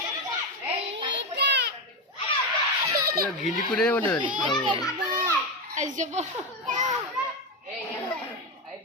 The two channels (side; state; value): both; normal; correlation 0.13